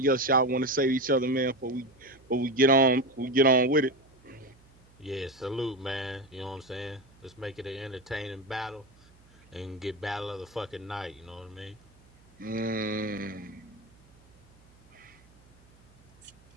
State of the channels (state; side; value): noise; right; hum, 28 dB below the sound